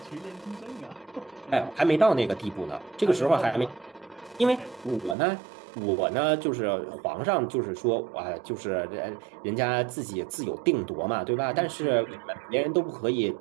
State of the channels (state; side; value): drops out; left; at 5.2 s